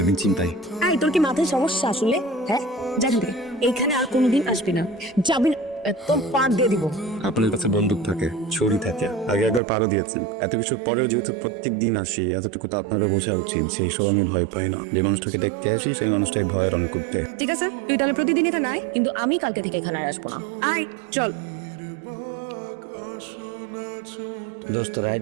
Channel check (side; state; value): left; drops out; at 9.6 s